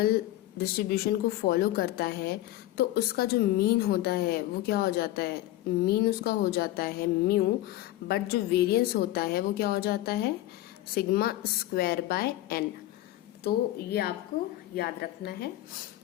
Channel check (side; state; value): right; quieter; 15.3 dB